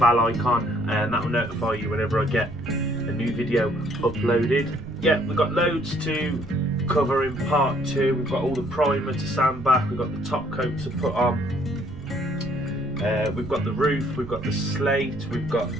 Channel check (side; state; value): right; noise; rumble, 14 dB below the sound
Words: icon and that will notify you whenever I get a new video uploaded. Yeah, we've got loads to cover in part 2. We've got all the primer to sand back, we've got the top coat to put on, we've got the roof, we've got the slate, we've got